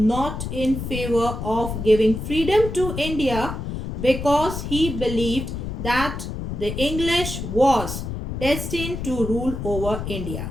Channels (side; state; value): left; noise; rumble, 6 dB below the sound